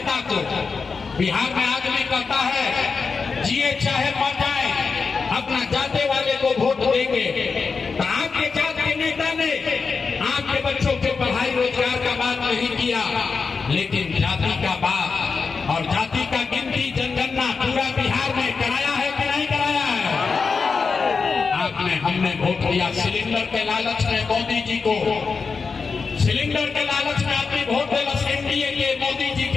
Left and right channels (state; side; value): quieter; right; 5.0 dB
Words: को। बिहार में आदमी कहता है जिए चाहे मर जाए, अपना जाते वाले को वोट देंगे। तो आपके जात के नेता ने आपके बच्चों के पढ़ाई रोजगार का बात नहीं किया, लेकिन जाति का बात और जाति का गिनती, जनगणना पूरा बिहार में कराया है कि नहीं कराया है? आपने, हमने वोट दिया सिलेंडर के लालच में मोदी जी को। सिलेंडर के लालच में आदमी वोट देगा एनडीए के, मोदी जी